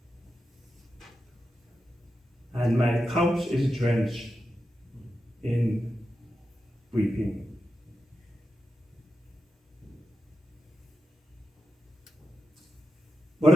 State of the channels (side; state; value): both; normal; correlation 0.89